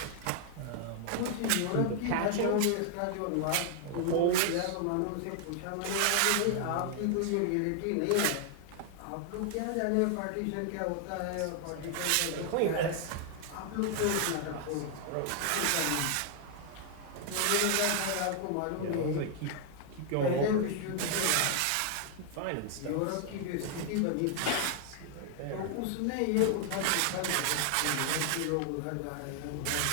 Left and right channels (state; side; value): different; both; correlation 0.00